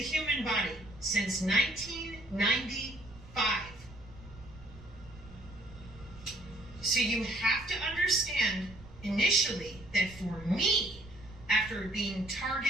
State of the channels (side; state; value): right; noise; rumble, 19 dB below the sound